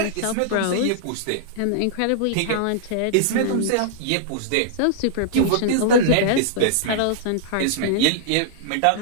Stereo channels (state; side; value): different; both; correlation -0.01